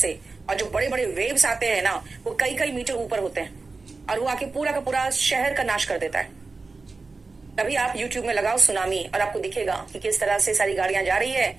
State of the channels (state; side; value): quieter; left; 3.9 dB